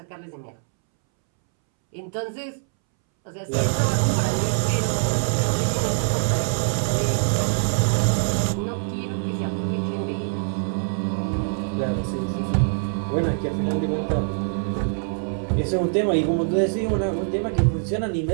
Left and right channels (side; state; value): left; silent; 63 dB below the other